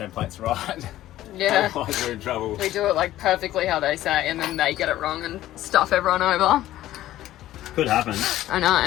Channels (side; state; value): right; quieter; 14.2 dB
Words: right. Yeah. Otherwise we're in trouble. We do it like perfectly how they say, and then they get it wrong and stuff everyone over. Could happen. I